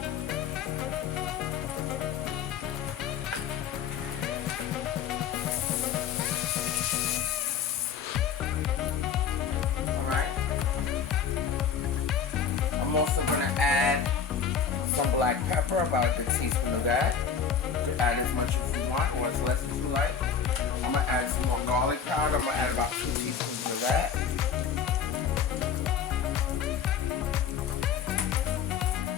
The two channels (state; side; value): quieter; right; 7.2 dB